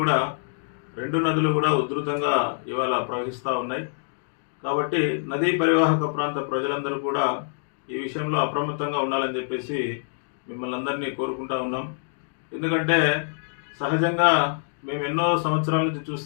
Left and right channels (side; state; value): right; silent; digital silence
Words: రెండు నదులు కూడా ఉధృతంగా ఇవాళ ప్రవహిస్తూ ఉన్నాయి. కాబట్టి నదీ పరివాహక ప్రాంత ప్రజలందరూ కూడా ఈ విషయంలో అప్రమత్తంగా ఉండాలని చెప్పేసి మిమ్మల్ని అందరినీ కోరుకుంటా ఉన్నాం. ఎందుకంటే సహజంగా మేము ఎన్నో సంవత్సరాల నుంచి